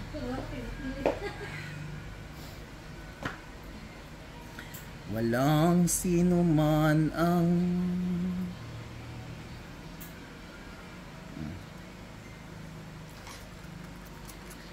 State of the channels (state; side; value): identical; both; correlation 1.00